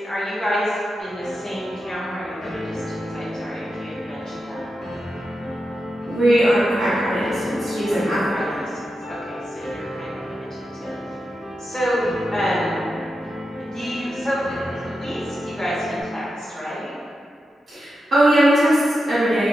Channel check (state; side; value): normal; both; correlation 0.89